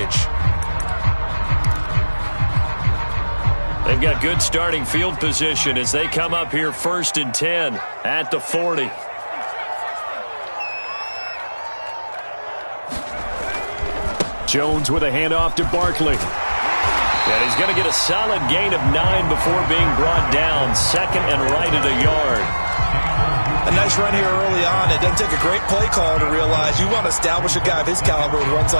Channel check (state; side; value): inverted; both; correlation -1.00